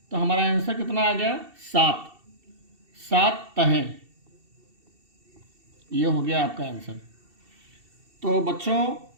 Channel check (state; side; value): late; left; 2.7 ms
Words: तो हमारा आंसर कितना आ गया, 7। 7 तहें, ये हो गया आपका आंसर। तो बच्चों